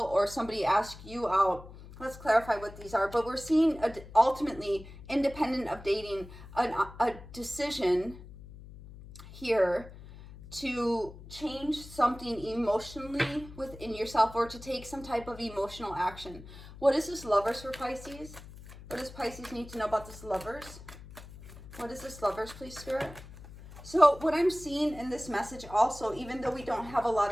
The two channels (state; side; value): noise; left; hum, 16 dB below the sound